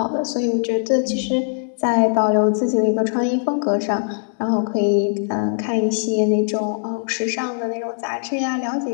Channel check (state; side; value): silent; right; 63 dB below the other